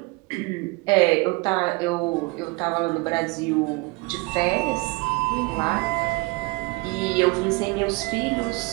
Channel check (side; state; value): left; quieter; 26.6 dB